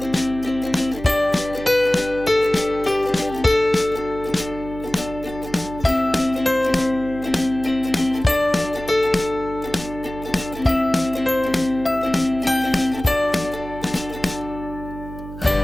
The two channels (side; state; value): right; noise; hum, 13 dB below the sound